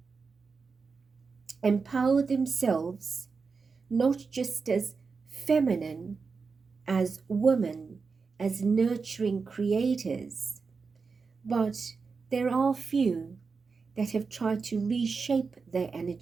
empowered themselves not just as feminine, as women, as nurturing creators, but there are few that have tried to reshape their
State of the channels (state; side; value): quieter; left; 4.9 dB